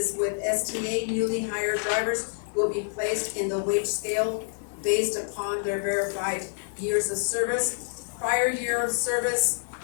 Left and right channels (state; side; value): silent; right; digital silence